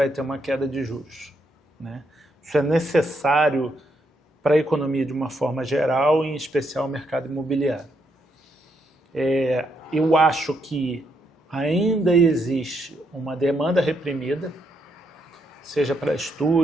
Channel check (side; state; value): both; normal; correlation 0.77